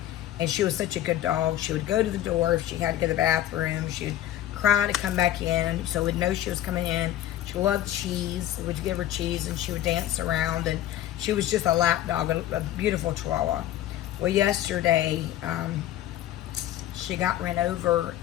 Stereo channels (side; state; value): right; quieter; 12.9 dB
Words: and she was such a good dog. She would go to the door if she had to go to the bathroom. She would cry to come back in, so we'd know she was coming in. She loved cheese. We'd give her cheese, and she would dance around, and she was just a lap dog, a beautiful Chihuahua. Well, yesterday, she got ran over